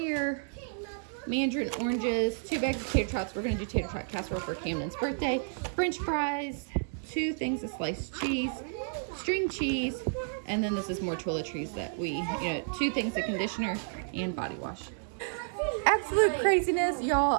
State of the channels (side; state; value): left; silent; digital silence